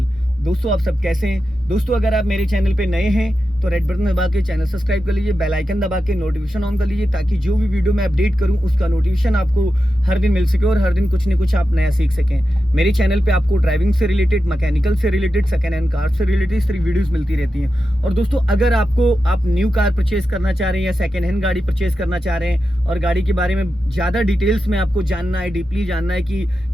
दोस्तों, आप सब कैसे हैं? दोस्तों, अगर आप मेरे चैनल पे नए हैं तो रेड बटन दबा के चैनल सब्सक्राइब कर लीजिए, बेल आइकन दबा के नोटिफिकेशन ऑन कर लीजिए, ताकि जो भी वीडियो मैं अपडेट करूं उसका नोटिफिकेशन आपको हर दिन मिल सके और हर दिन कुछ न कुछ आप नया सीख सकें। मेरे चैनल पे आपको ड्राइविंग से रिलेटेड, मैकेनिकल से रिलेटेड, सेकेंड हैंड कार से रिलेटेड इस तरह वीडियोस मिलती रहती हैं। और दोस्तों, अगर आप न्यू कार परचेज करना चाह रहे हैं या सेकेंड हैंड गाड़ी परचेज करना चाह रहे हैं और गाड़ी के बारे में ज़्यादा डिटेल्स में आपको जानना है, डीपली जानना है कि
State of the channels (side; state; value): both; normal; correlation 0.90